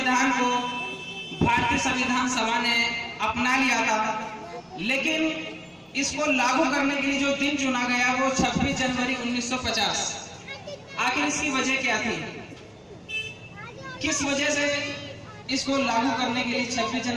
को भारतीय संविधान सभा ने अपना लिया था। लेकिन इसको लागू करने के लिए जो दिन चुना गया वो 26 जनवरी 1950। आखिर इसकी वजह क्या थी? किस वजह से इसको लागू करने के लिए 26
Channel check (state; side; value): identical; both; correlation 1.00